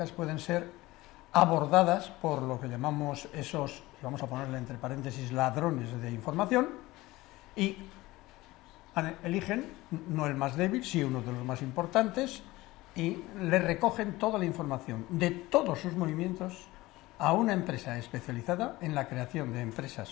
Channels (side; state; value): right; quieter; 19.2 dB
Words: pueden ser abordadas por lo que llamamos esos, vamos a ponerle entre paréntesis, ladrones de información, y eligen no el más débil, sí uno de los más importantes, y le recogen toda la información de todos sus movimientos a una empresa especializada en la creación de